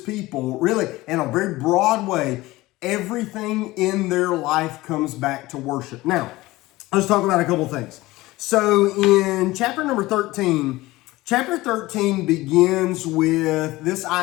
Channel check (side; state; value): right; quieter; 19.1 dB